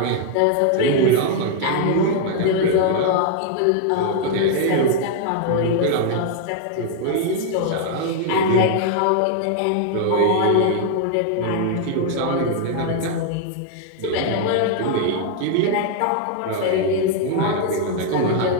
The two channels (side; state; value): both; different; correlation 0.00